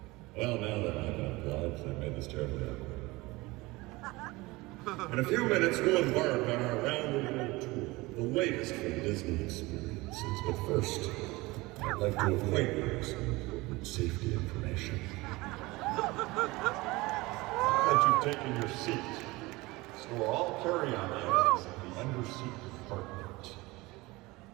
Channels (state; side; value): quieter; left; 21.8 dB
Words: Well, now that I've been obliged, I've made this terribly awkward. In a few minutes, we'll embark on our round-the-world tour, the latest from Disney experiences. But first, I'd like to acquaint you with some important safety information. Now that you've taken your seat, store all carry-on items in the under-seat compartment.